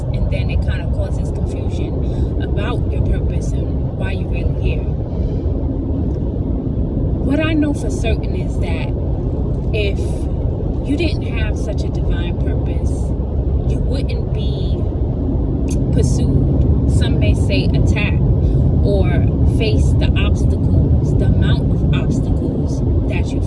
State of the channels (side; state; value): both; identical; correlation 1.00